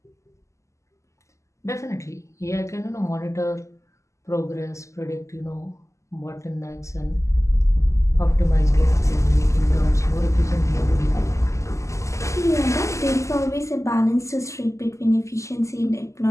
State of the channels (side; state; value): right; late; 0.15 ms